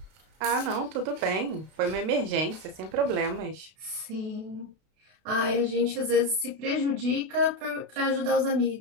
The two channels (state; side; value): late; left; 32 ms